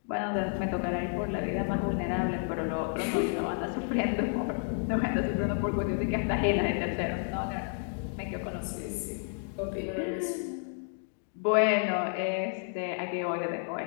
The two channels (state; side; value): silent; right; 57 dB below the other